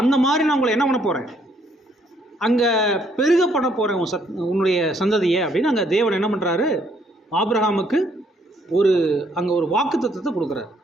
அந்த மாதிரி நான் உங்களை என்ன பண்ண போகிறேன், அங்கே பெருக பண்ண போகிறேன் உன்னுடைய சந்ததியை அப்படின்னு அங்கே தேவன் என்ன பண்ணுறாரு, ஆபிரகாமுக்கு அங்கே ஒரு வாக்குத்தத்தத்தை கொடுக்குறாரு.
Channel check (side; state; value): both; normal; correlation 0.68